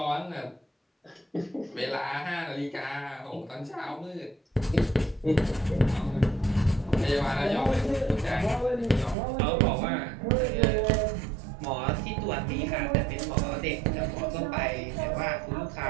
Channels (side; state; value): left; drops out; at 9.2 s